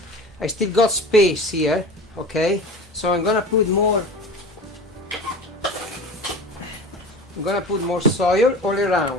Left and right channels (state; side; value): normal; both; correlation 0.35